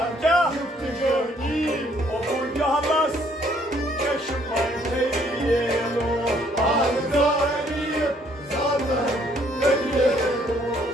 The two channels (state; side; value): normal; both; correlation 0.65